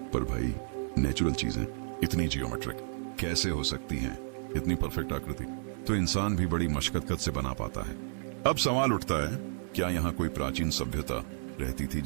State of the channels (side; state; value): left; silent; 57 dB below the other